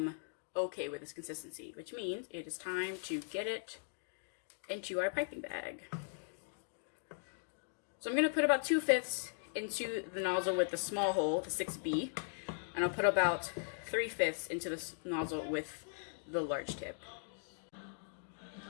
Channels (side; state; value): right; silent; digital silence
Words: okay with this consistency, which means it is time to get it into our piping bag. So I'm going to put about 2/5 into the nozzle with the small hole, the 6B, and I'll put about 3/5 into the nozzle with the large tip.